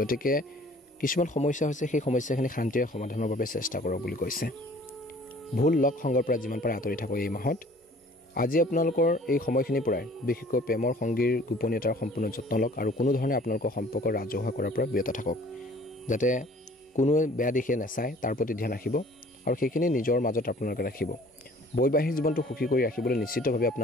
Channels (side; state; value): both; normal; correlation 0.52